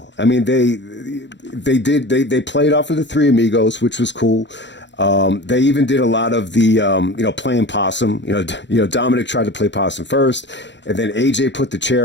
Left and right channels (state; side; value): late; right; 0.52 ms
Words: I mean, they played off of the Three Amigos, which was cool. They even did a lot of the, playing possum. Dominic tried to play possum first, and then AJ put the